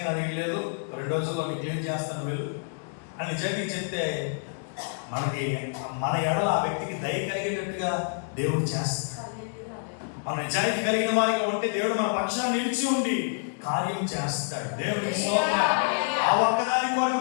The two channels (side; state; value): right; silent; digital silence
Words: నా దగ్గర లేదు, 2 రోజుల్లో క్లియర్ చేస్తాను వెళ్ళు అని నిజాయితీ చెప్తే మనకి మన ఎడల ఆ వ్యక్తికి దయ కలిగేటట్టుగా దేవుడు చేస్తాడు. మన నిజాయితీ కలిగిన వారిగా ఉంటే దేవుడు మన పక్షాన్ని నిలిచి ఉండి కార్యం చేస్తాడు. దేవుడికి స్తోత్రం. ఆ ఒక్కదాని కొరకు